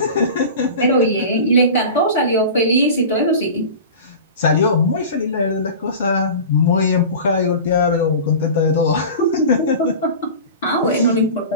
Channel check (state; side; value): inverted; both; correlation -0.34